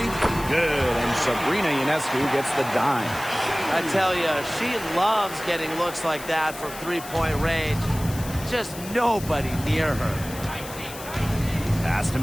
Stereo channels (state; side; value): noise; left; hiss, 14 dB below the sound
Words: Good. And Sabrina Ionescu gets the dime. I tell you, she loves getting looks like that from three-point range. Just nobody near her. Pass to